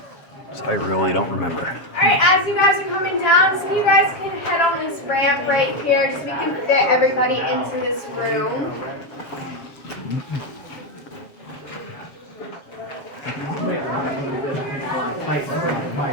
I really don't remember. Alright, as you guys are coming down, so you guys can head on this ramp right here, just so we can fit everybody into this room.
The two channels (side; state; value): right; late; 7.3 ms